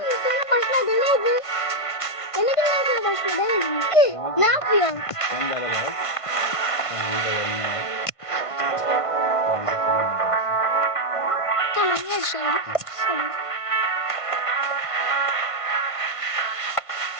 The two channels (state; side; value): late; right; 1.5 ms